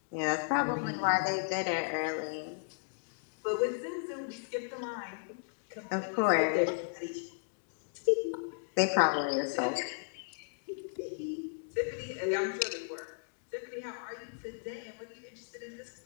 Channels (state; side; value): silent; right; digital silence